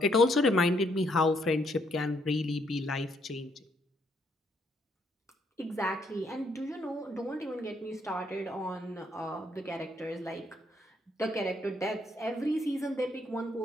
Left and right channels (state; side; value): normal; both; correlation 0.72